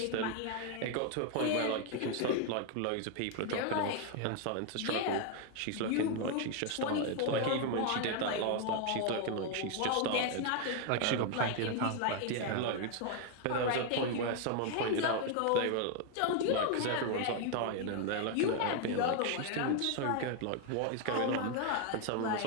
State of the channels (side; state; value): both; different; correlation 0.01